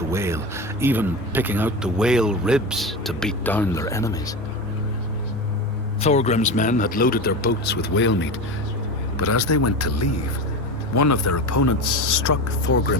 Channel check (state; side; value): normal; both; correlation 0.24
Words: whale, even picking out the whale ribs to beat down their enemies. Thorgrim's men had loaded their boats with whale meat, but as they went to leave, one of their opponents struck